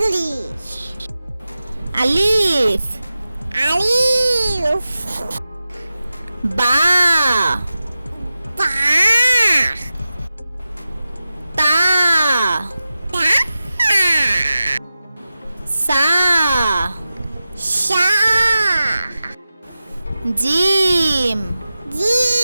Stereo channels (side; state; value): both; inverted; correlation -0.93